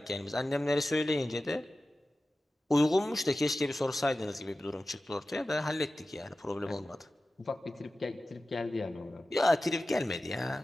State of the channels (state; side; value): normal; both; correlation 0.95